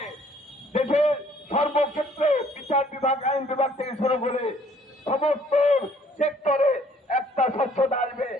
দেশের সর্বক্ষেত্রে বিচার বিভাগ, আইন বিভাগ থেকে শুরু করে সমস্ত সেক্টরে একটা স্বচ্ছতা আসবে,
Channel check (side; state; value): both; normal; correlation 0.60